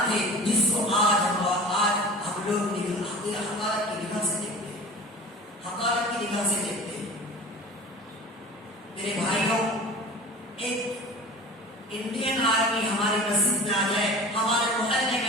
تھے جس کو آج ہم لوگ حقارت کی نگاہ سے دیکھتے ہیں، حقارت کی نگاہ سے دیکھتے ہیں۔ میرے بھائیوں، ایک انڈین آرمی ہماری مسجد میں آ جائے، ہمارے محلے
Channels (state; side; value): normal; both; correlation 0.39